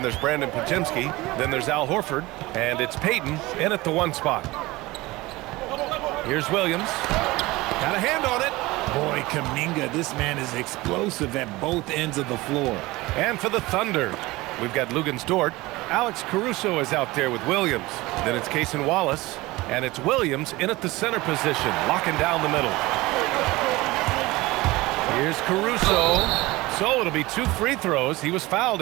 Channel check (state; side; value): quieter; left; 20.4 dB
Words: there's Brandon Podziemski. Then there's Al Horford. And it's Payton in at the 1 spot. Here's Williams. Got a hand on it. Boy, Kuminga, this man is explosive at both ends of the floor. And for the Thunder, we've got Luguentz Dort. Alex Caruso is out there with Williams. Then it's Cason Wallace. And it's Williams in at the center position, locking down the middle. Here's Caruso. So it'll be 2 free throws. He was fouled